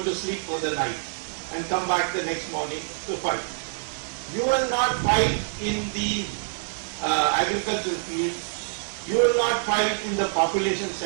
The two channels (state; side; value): silent; left; digital silence